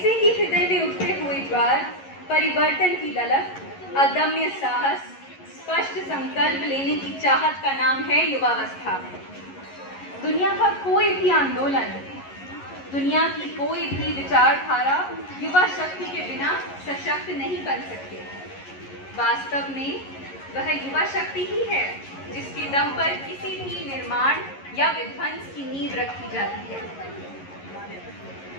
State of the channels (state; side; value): late; right; 11 ms